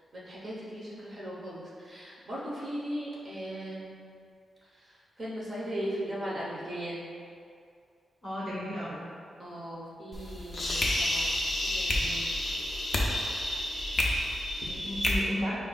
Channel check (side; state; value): both; normal; correlation 0.88